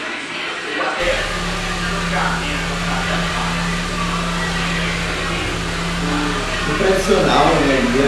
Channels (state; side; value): identical; both; correlation 1.00